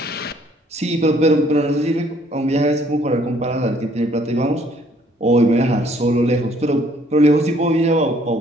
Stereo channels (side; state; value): both; normal; correlation 0.62